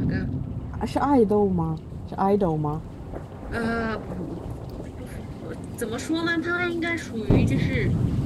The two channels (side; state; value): both; identical; correlation 1.00